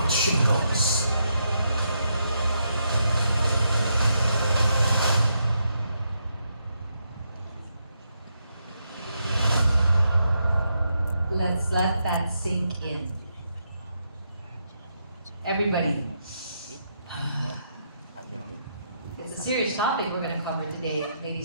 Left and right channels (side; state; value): both; inverted; correlation -0.80